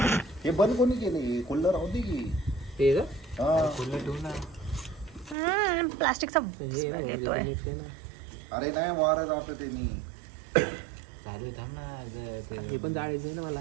हे बंद कोणी केलं? कुल्लर राहू दे की. ते खुल्लं ठेवू ना. प्लास्टिकचा येतोय. अरे नाही, वारा जात ते नाही. चालू थांब ना. हे पण जाळायचं ना मला.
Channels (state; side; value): drops out; left; at 5.4 s